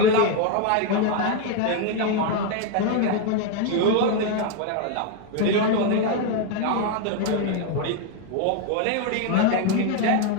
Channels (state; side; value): different; both; correlation 0.02